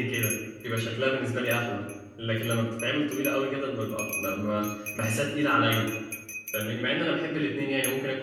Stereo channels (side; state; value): both; identical; correlation 1.00